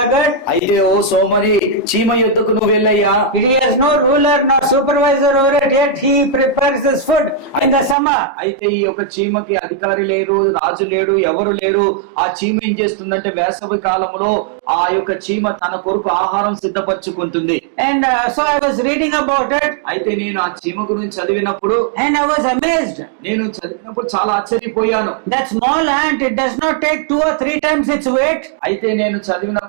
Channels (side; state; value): left; drops out; at 8.0 s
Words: అయితే ఓ సోమరి, చీమ యుద్ధకు నువ్వు వెళ్ళయ్యా. He has no ruler nor supervisor over it, yet he prepares his food in the summer. అయితే ఈ యొక్క చీమకి అధికారి లేరు, రాజు లేడు, ఎవరు లేరు. ఆ చీమ ఏం చేస్తుందంటే వేసవి కాలంలో ఆ యొక్క చీమ తన కొరకు ఆహారం సిద్ధపరచుకుంటుంది. And so I was reading about it. అయితే నేను ఆ చీమ గురించి చదివినప్పుడు, And I was amazed. నేను చదివినప్పుడు చాలా ఆశ్చర్యపోయాను. That small ant, it does not take 2 or 3 times its weight. అయితే నేను